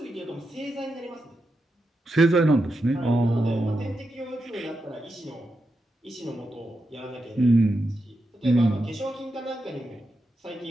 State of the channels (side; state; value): both; normal; correlation 0.86